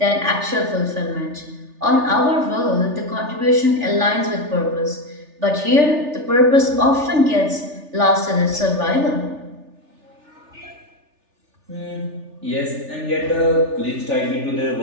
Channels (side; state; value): left; late; 3.4 ms